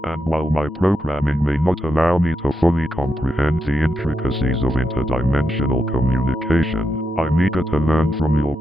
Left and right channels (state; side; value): normal; both; correlation 0.85